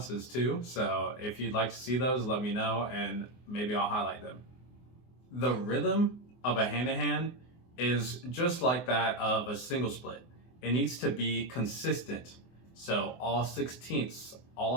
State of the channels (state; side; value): late; right; 24 ms